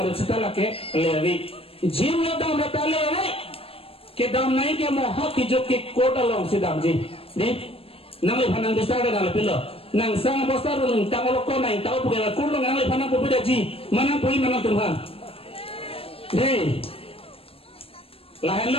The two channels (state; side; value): late; right; 0.28 ms